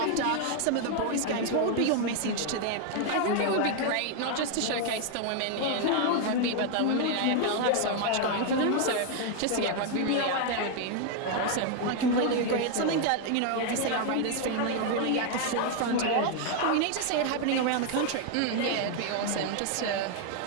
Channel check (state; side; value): different; both; correlation 0.00